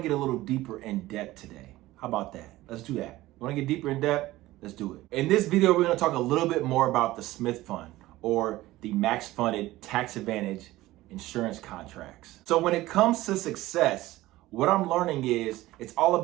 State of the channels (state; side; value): quieter; left; 17.3 dB